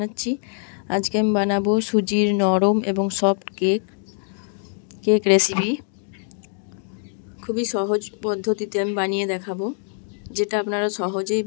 আজকে আমি বানাবো সুজির নরম এবং সফট কেক রেসিপি। খুবই সহজ পদ্ধতিতে আমি বানিয়ে দেখাবো, যেটা আপনারা সহজেই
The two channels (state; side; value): silent; right; 55 dB below the other